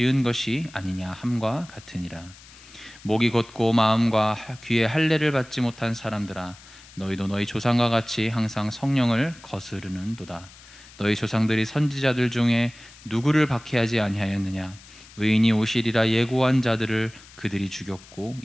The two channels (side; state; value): left; noise; hiss, 21 dB below the sound